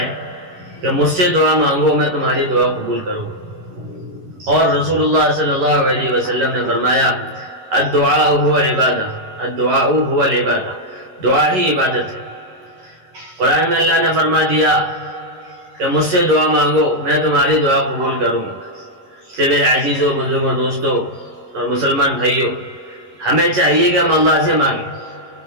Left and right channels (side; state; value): left; late; 11 ms